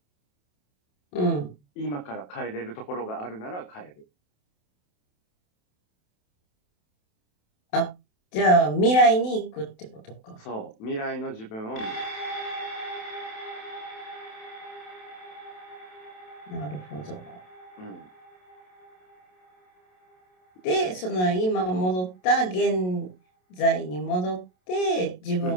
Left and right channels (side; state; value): right; late; 27 ms